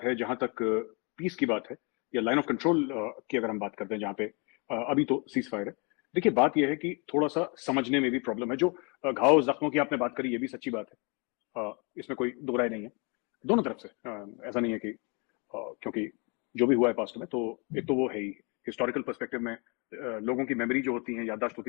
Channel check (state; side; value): quieter; right; 32.3 dB